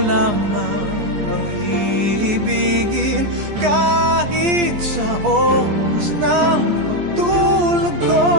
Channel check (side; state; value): left; late; 14 ms